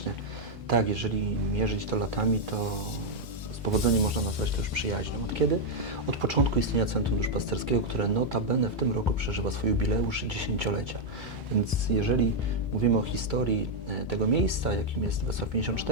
Tak, jeżeli mierzyć to latami, to z powodzeniem można nazwać to już przyjaźnią. Od kiedy? Od początku istnienia Centrum Duszpasterskiego, które notabene w tym roku przeżywa swój jubileusz 10-lecia. Więc jeżeli mówimy o historii tego miejsca, jakim jest Wesoła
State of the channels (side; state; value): both; normal; correlation -0.01